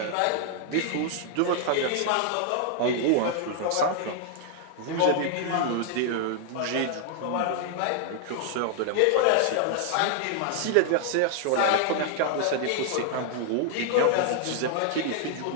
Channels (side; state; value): both; different; correlation 0.00